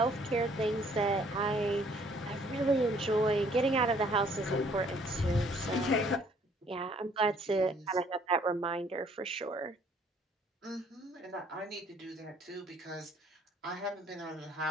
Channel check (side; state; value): both; normal; correlation 0.61